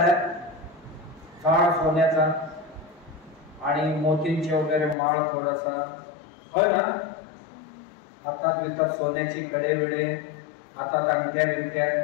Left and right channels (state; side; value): drops out; right; at 5.0 s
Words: काळ सोन्याचा आणि मोतींचे वगैरे माळ थोडासा, होय ना? हातात बितात सोन्याची कडे बिडे, हातात अंगठ्या बिंगठ्या,